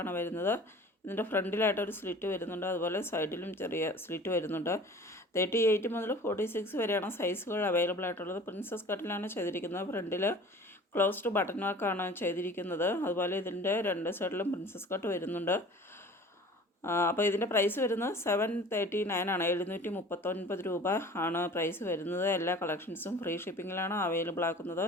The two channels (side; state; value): both; normal; correlation 0.44